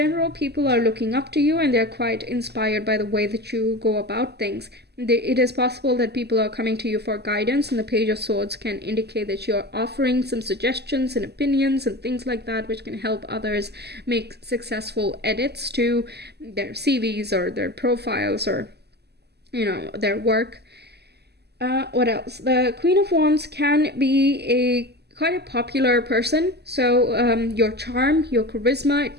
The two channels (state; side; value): late; left; 0.48 ms